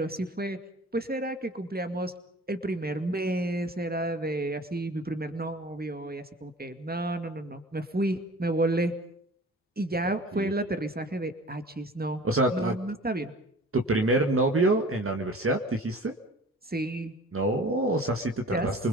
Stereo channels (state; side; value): normal; both; correlation 0.44